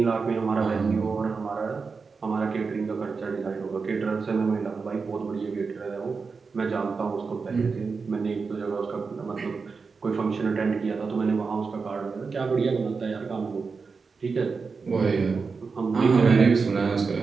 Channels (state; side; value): quieter; left; 4.8 dB